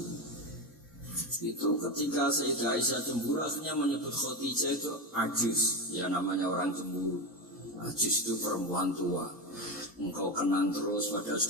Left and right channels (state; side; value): normal; both; correlation 0.16